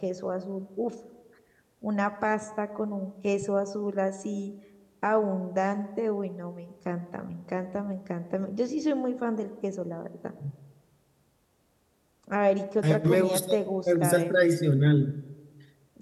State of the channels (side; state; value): both; identical; correlation 1.00